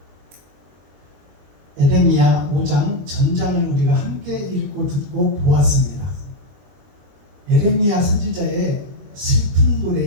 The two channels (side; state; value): left; late; 21 ms